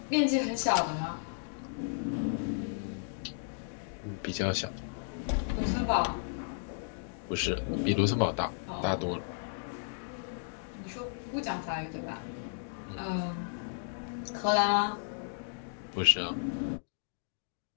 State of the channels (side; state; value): right; silent; digital silence